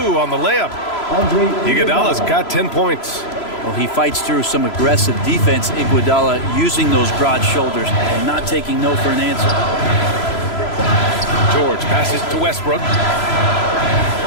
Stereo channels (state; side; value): late; right; 3.0 ms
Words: on the layup. Iguodala's got 10 points. Well, he fights through some aggressive defense. Iguodala using those broad shoulders and not taking no for an answer. George passes to Westbrook.